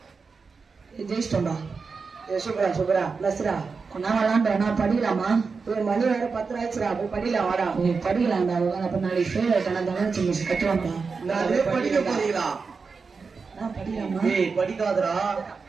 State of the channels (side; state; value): left; quieter; 4.9 dB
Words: ஜெயிஸ்டோடா. ஏய் சூப்பரா நஸ்ரா. நான் விளையாண்டா நான் படிக்கலாமா? ஏய் மணி வேற 10 ஆயிடுச்சுடா. போய் படிக்கலாம் வாடா. நீ படிக்கலாம்டா. அப்ப நாளைக்கு ஃபெயில் ஆயிட்டா தங்கச்சி மிஸ் கட்டுவாங்கடா. நான் படிக்க போறீங்களா? நான் படிக்கலாமா? டேய் படிக்காதடா.